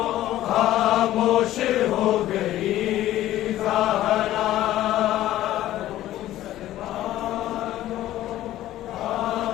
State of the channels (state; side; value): quieter; right; 14.1 dB